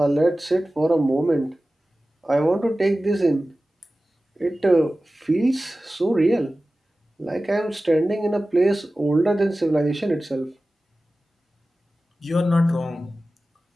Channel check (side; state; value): both; normal; correlation 0.96